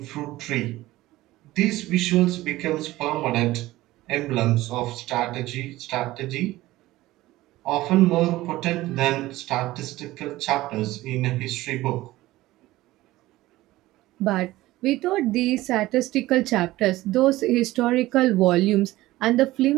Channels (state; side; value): quieter; left; 17.3 dB